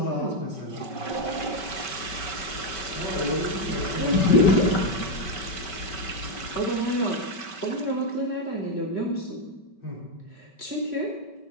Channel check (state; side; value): late; right; 5.2 ms